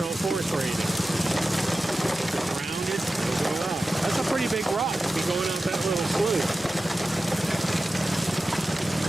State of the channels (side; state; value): both; normal; correlation 0.94